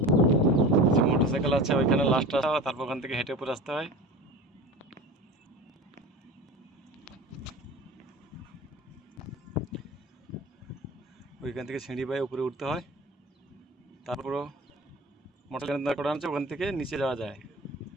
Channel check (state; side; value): normal; both; correlation 0.35